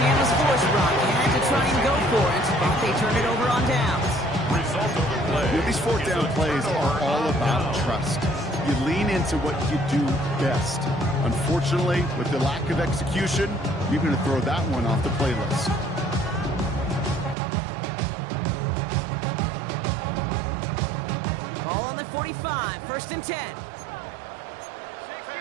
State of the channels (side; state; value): left; drops out; at 17.4 s